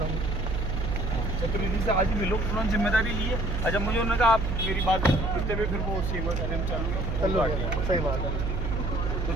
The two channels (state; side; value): noise; right; hum, 1 dB below the sound